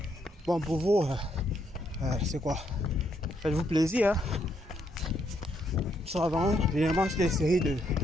bon, pour vous, c'est quoi? Faites-vous plaisir. Ça va, généralement, c'est des séries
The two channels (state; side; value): normal; both; correlation 0.75